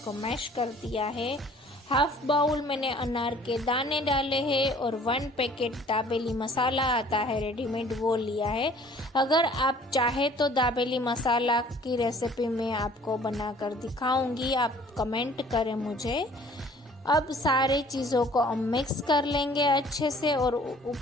मैश कर दिया है। हाफ बाउल मैंने अनार के दाने डाले हैं और 1 पैकेट दाबेली मसाला आता है रेडीमेड, वो लिया है। अगर आप चाहे तो दाबेली मसाला की रेसिपी मैं आपको बनाकर दिखाऊंगी, आप कमेंट करें मुझे। अब सारे चीज़ों को हम मिक्स कर लेंगे अच्छे से, और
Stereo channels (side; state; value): both; normal; correlation 0.53